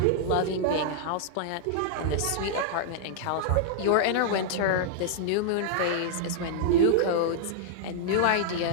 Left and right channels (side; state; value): both; different; correlation -0.01